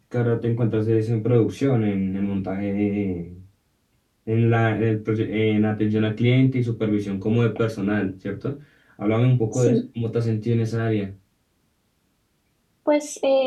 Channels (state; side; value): identical; both; correlation 1.00